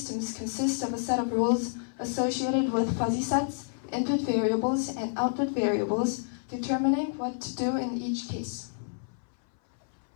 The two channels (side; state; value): right; silent; 58 dB below the other